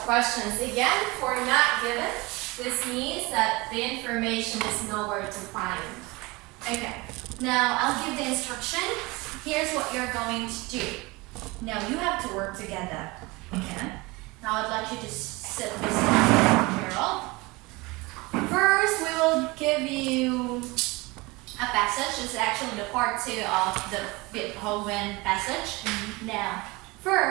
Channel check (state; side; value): quieter; left; 23.9 dB